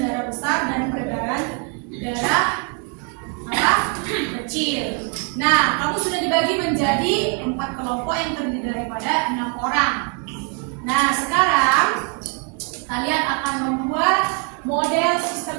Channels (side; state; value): left; quieter; 33.0 dB